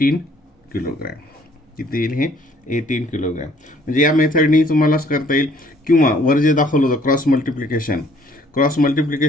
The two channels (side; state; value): both; normal; correlation 0.60